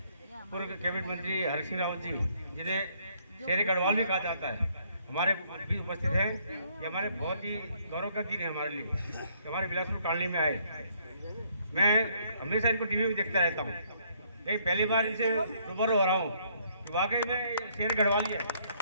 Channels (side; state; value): both; inverted; correlation -0.67